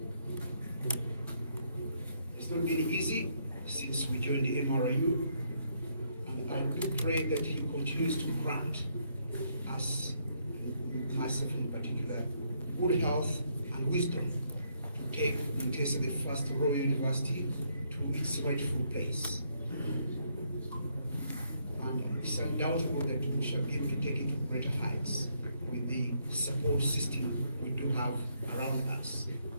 It's not been easy since we joined the MRIU, and I do pray that He continues to grant us, myself in particular, good health and wisdom to take Muteesa, the first Royal University, to its rightful place. And it's undoubtable that we shall be able to take it to greater heights with the support system we do have around us.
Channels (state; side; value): inverted; both; correlation -0.73